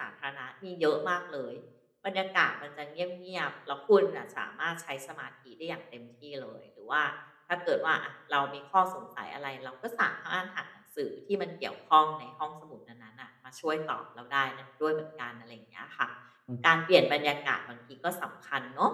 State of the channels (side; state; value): both; identical; correlation 1.00